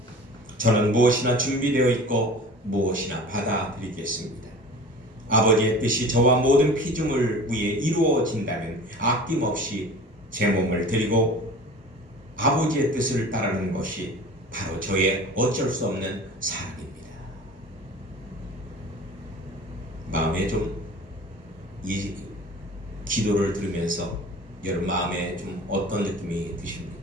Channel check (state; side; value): normal; both; correlation 0.40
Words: 저는 무엇이나 준비되어 있고 무엇이나 받아드리겠습니다. 아버지의 뜻이 저와 모든 피조물 위에 이루어진다면 아낌없이 제 몸을 드리고 아버지의 뜻을 따르는 것이 바로 저의 어쩔 수 없는 사랑입니다. 마음에 좀 이 기도를 들으면서 여러분 마음에 좀 어떤 느낌이